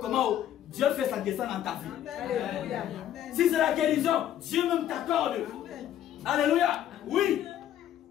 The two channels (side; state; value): right; quieter; 11.2 dB